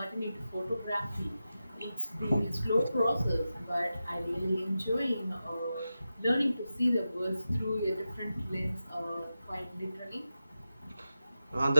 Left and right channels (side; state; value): both; inverted; correlation -0.91